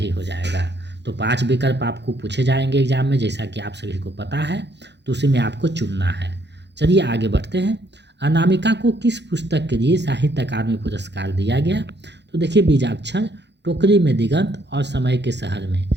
हो जाएगा। तो 5 विकल्प आपको पूछे जाएंगे एग्जाम में, जैसा कि आप सभी को पता है, तो उसी में आपको चुनना है। चलिए आगे बढ़ते हैं। अनामिका को किस पुस्तक के लिए साहित्य अकादमी पुरस्कार दिया गया? तो देखिए बीजाक्षर, टोकरी में दिगंत और समय के शहर में,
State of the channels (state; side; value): late; left; 0.50 ms